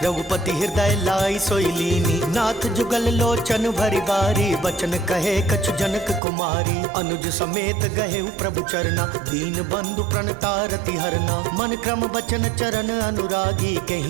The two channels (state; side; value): drops out; left; at 6.2 s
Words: रघुपति हृदय लाई सोई लीनी। नाथ जुगल लोचन भरि बारी, बचन कहे कछु जनक कुमारी। अनुज समेत गहे प्रभु चरना, दीन बंधु प्रणतारति हरना। मन क्रम बचन चरण अनुरागी,